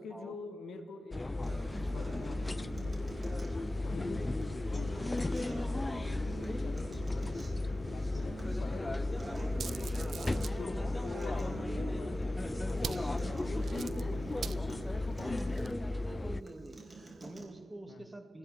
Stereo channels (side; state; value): both; normal; correlation 0.96